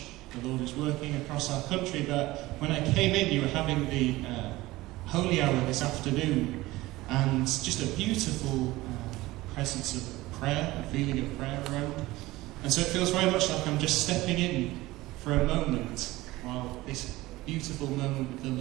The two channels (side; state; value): left; quieter; 18.8 dB